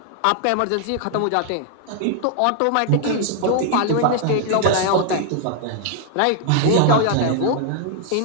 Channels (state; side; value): different; both; correlation 0.00